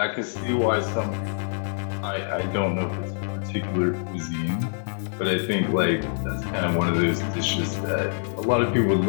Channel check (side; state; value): right; silent; 58 dB below the other